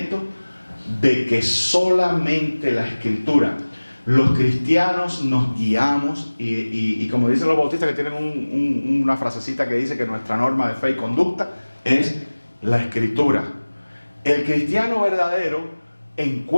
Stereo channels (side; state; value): both; inverted; correlation -1.00